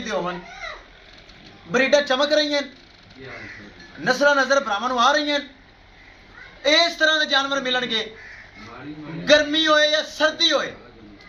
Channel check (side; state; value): both; identical; correlation 1.00